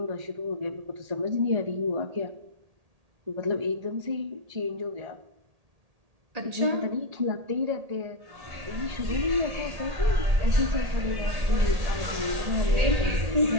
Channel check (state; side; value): late; left; 1.8 ms